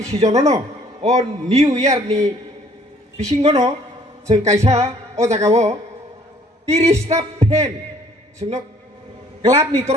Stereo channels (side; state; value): both; normal; correlation 0.59